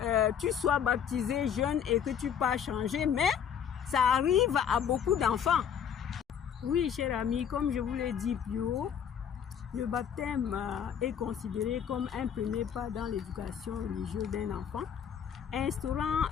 tu sois baptisé jeune et que tu pas changer, mais ça arrive à beaucoup d'enfants. Oui, cher ami, comme je vous l'ai dit plus haut, le baptême est considéré comme un premier pas dans l'éducation religieuse d'un enfant, instaurant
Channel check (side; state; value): right; quieter; 8.3 dB